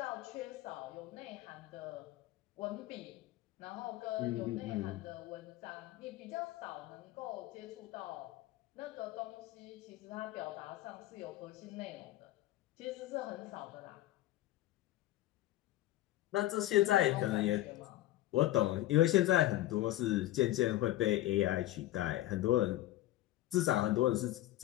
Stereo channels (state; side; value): quieter; right; 15.3 dB